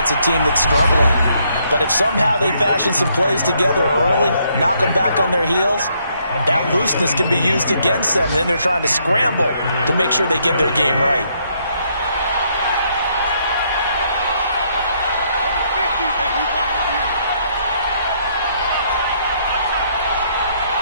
a team that's struggling. But if somehow they fashion some plays together early, knock them back on their heels, that looseness can be used against them. Then they're trying to scramble to make sure they get their game right.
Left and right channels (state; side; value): inverted; both; correlation -0.71